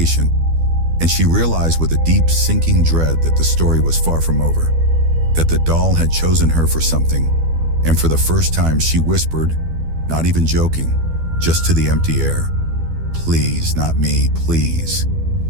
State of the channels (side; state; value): left; late; 12 ms